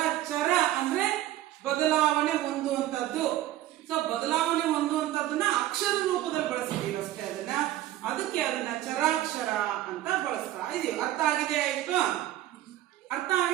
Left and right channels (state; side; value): quieter; left; 14.2 dB